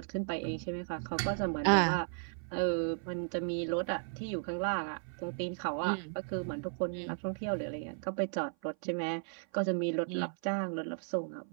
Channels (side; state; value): left; silent; 54 dB below the other